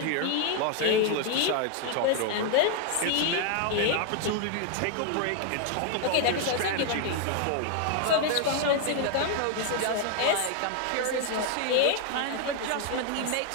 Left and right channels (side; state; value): both; different; correlation 0.00